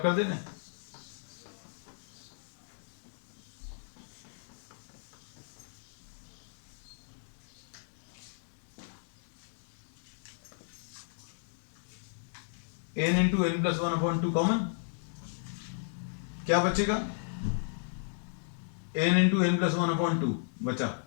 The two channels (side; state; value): right; silent; digital silence